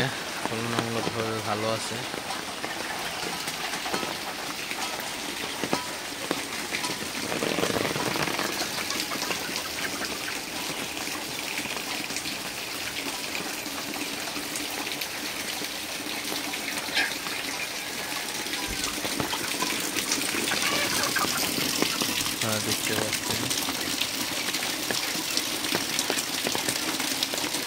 তুলনামূলকভাবে ভালো আছে। দেখতে পাচ্ছেন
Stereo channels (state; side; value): identical; both; correlation 1.00